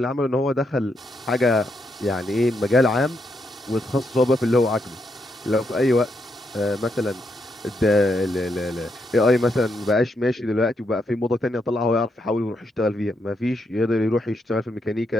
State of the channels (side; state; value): both; normal; correlation 0.80